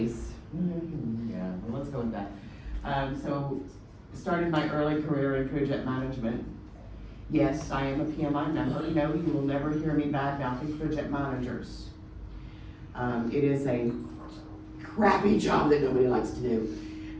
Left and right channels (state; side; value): identical; both; correlation 1.00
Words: let's go with that. So started my early career in project management. Yes, I am a PMI member. No, you will never hear me bad-mouthing project managers. It is a crappy job that nobody likes to do.